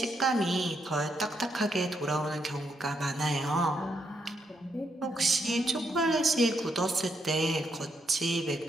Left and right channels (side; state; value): both; normal; correlation 0.78